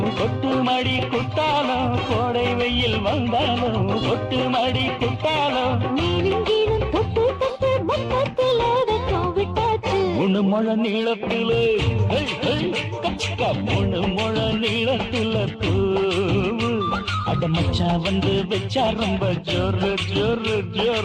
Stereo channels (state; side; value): identical; both; correlation 1.00